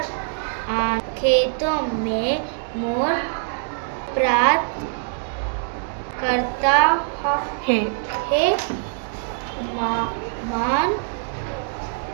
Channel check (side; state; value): left; silent; digital silence